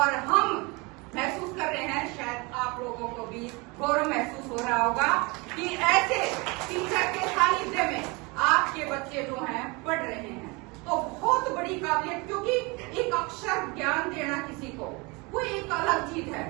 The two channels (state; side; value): quieter; left; 27.1 dB